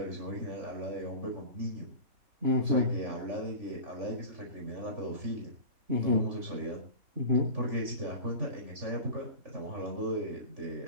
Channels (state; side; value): late; left; 3.5 ms